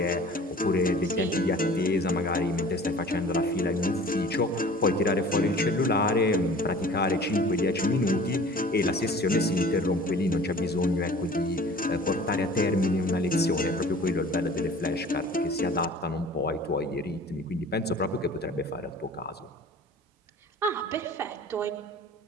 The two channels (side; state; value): both; normal; correlation 0.45